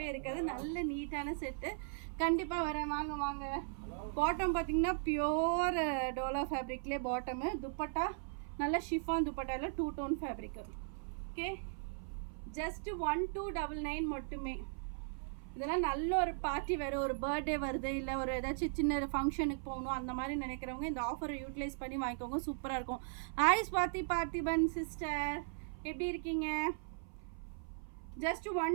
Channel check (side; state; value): left; silent; 52 dB below the other